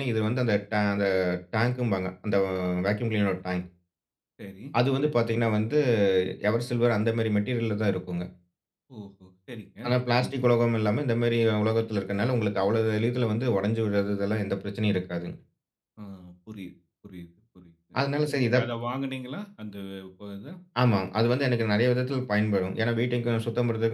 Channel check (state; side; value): identical; both; correlation 1.00